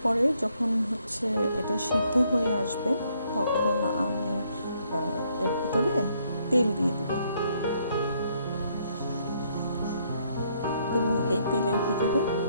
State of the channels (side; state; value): both; inverted; correlation -0.71